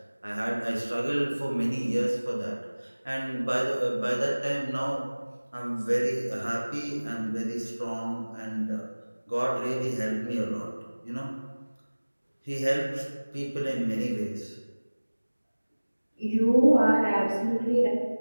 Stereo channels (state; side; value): inverted; both; correlation -1.00